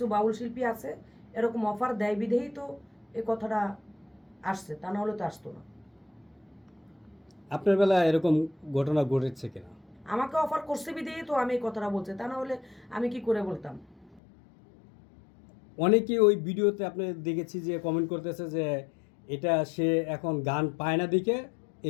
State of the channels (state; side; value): drops out; right; at 14.2 s